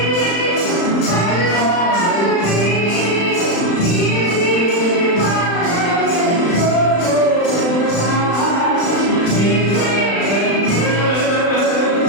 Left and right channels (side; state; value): right; late; 35 ms